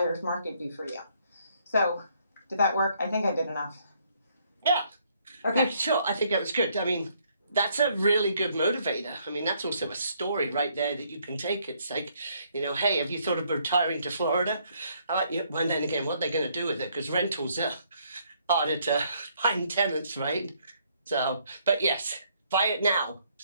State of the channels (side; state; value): both; inverted; correlation -0.68